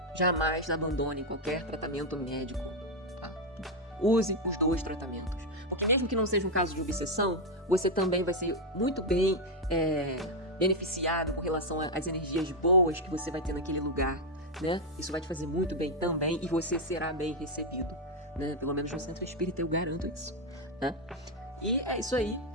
Jamais abandonem qualquer tratamento médico. Use os dois tratamentos. Porque mesmo que não seja um caso de obsessão, você também vai ser muito bem beneficiado com relação às energias boas que você vai ter naquele lugar, né? Isso vai te fazer muito bem também e você será bem recebido, né? Pelo menos no centro espírita eu garanto isso, né? E é isso aí.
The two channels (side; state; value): both; normal; correlation 0.03